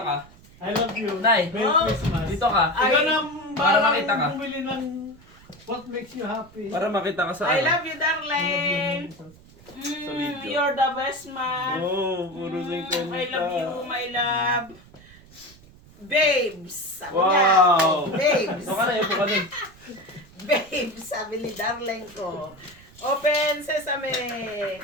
ka. I love you. Nay, Merry oh. Christmas. Dito ka. Ikaw na Para makita ka. bumili ng what makes you happy. Para makita ka sa I ano. love you, darling. video. You're the best man. Oh, puro singkong I love you, my love. Babes. Sabi Wow. niya. Babes. Ito ka na, ito ka na. Babes, sabi ni darling ko. Open sesame.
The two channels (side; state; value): right; noise; rumble, 24 dB below the sound